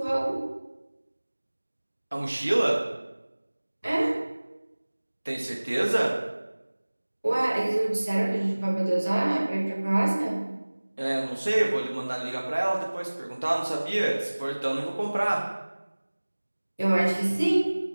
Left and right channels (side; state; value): both; inverted; correlation -1.00